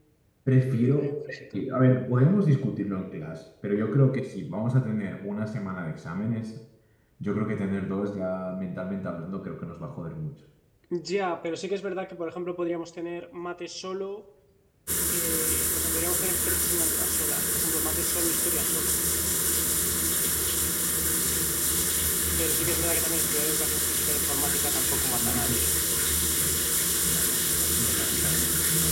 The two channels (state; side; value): identical; both; correlation 1.00